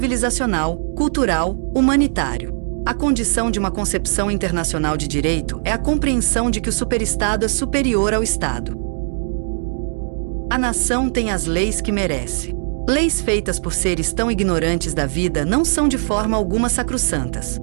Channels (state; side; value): silent; left; digital silence